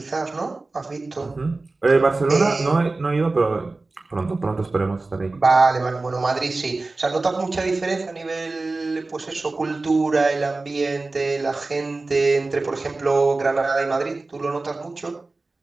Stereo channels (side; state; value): left; quieter; 3.4 dB